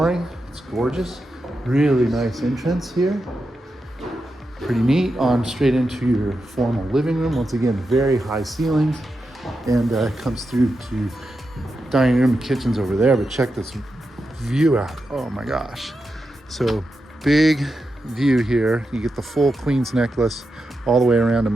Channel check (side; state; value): both; normal; correlation 0.88